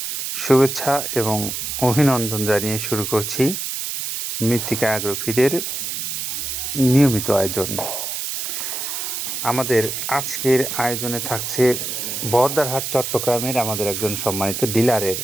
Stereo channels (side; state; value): right; noise; hiss, 4 dB below the sound